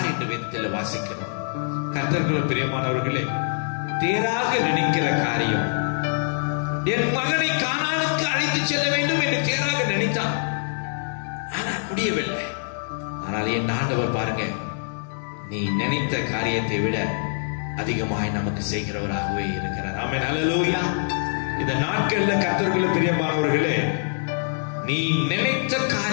என்று வேதத்தில் வாசிக்கிறோம். கர்த்தருக்குள்ள பிரியமானவர்களே, தேராக நினைக்கிற காரியம், என் மகனை கானானுக்கு அழைத்து செல்ல வேண்டும் என்று தேராக நினைத்தான். ஆனால் முடியவில்லை. ஆனால் என் ஆண்டவர் பாருங்க, நீ நினைத்த காரியத்தை விட அதிகமாய் நமக்கு செய்கிறவராகவே இருக்கிறார். ஆமென், அல்லேலூயா. இந்த நாட்கள்ல கர்த்தருக்குள்ள பிரியமானவர்களே, நீ நினைத்த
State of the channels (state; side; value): silent; right; digital silence